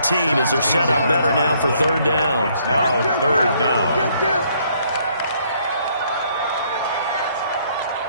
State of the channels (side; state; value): both; inverted; correlation -0.67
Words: as they're set up better now for 3rd down. It's now 3rd down.